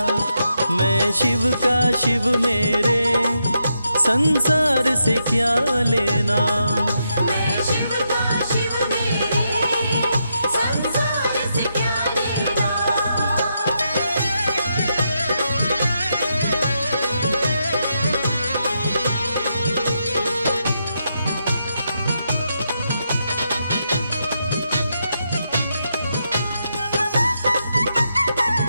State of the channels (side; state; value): both; inverted; correlation -0.82